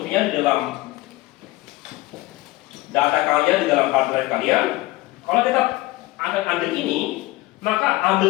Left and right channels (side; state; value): right; quieter; 19.1 dB